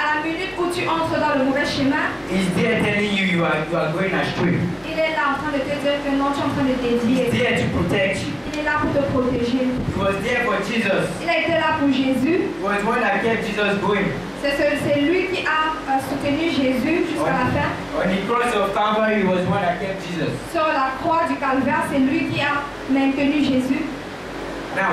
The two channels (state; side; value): identical; both; correlation 1.00